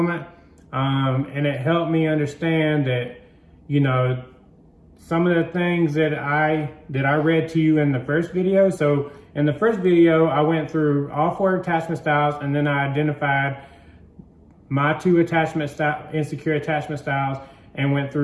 And it helped me understand that, you know, some of the things that I read to you in the first video. So in the first video, I went through all 4 attachment styles, and then I identified my 2 insecure attachment styles, and went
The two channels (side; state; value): both; identical; correlation 1.00